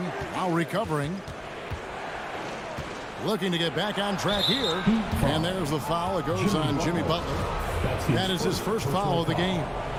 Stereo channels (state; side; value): identical; both; correlation 1.00